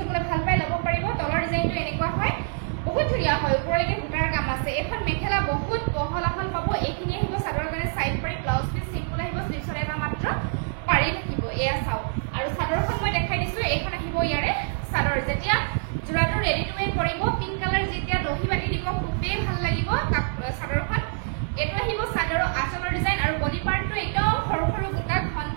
ভাল পাই ল'ব পাৰিব তলৰ ডিজাইনটো এনেকুৱা হয় বহুত ধুনীয়া হয় ওপৰলৈকে বুটাৰ কাম আছে এখন মেখেলা বহুত বহল এখন পাব এইখিনি আহিব চাদৰৰ কাৰণে সাইড পাৰি ব্লাউজ পিস সিম্পল আহিব স্লিভছৰ এটা মাত্ৰ পাৰি থাকিব এয়া চাও আৰু চাদৰখন মই দেখাই দিছো এইখন আহিব ইয়াৰে চাদৰ যেতিয়া জোৰাটো ৰেডি টু ৱে পৰিব পিংক কালাৰ যেতিয়া দহি বাটি দিব খুবেই ভাল লাগিব চাদৰখন এটো আহিব চাদৰৰ আঁচলৰ ডিজাইন আৰু বডি পাৰ্টটো একদম সৰু সৰু বুটা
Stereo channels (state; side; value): silent; left; 61 dB below the other